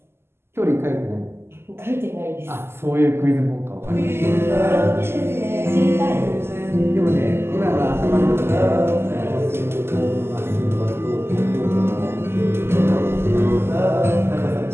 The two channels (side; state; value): left; late; 0.12 ms